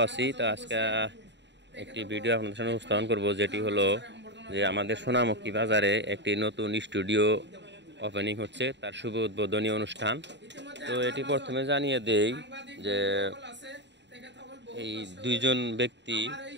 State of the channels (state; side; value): late; left; 0.52 ms